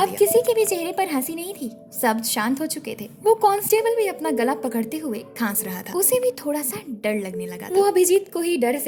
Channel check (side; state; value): both; identical; correlation 1.00